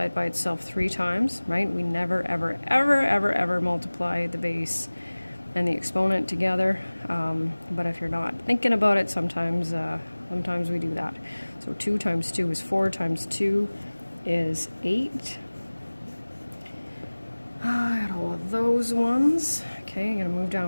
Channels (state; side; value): inverted; both; correlation -1.00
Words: it by itself 3 times, right? We never, ever multiply the base and the exponent together. But if you're not thinking about it, sometimes we do that. So 2 times 2 is 4 times 2 is 8. I got all of those ones. Okay, I'm going to move